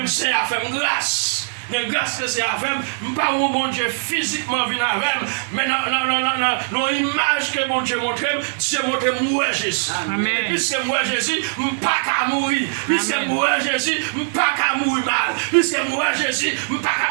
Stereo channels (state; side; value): silent; left; 62 dB below the other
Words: c'est à faire grâce. Mais grâce que c'est avec, pas mon bon Dieu physiquement venu avec, mais dans l'image que mon Dieu montre, Dieu montre moi Jésus. Amen. Et puisque moi Jésus, pas qu'à mourir. Puisque moi Jésus, pas qu'à mourir mal. Puisque moi Jésus, pas